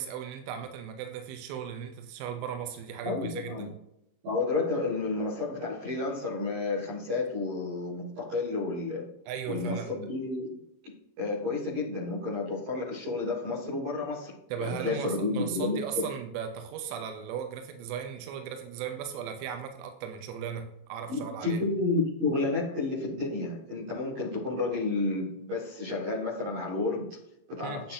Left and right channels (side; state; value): left; late; 23 ms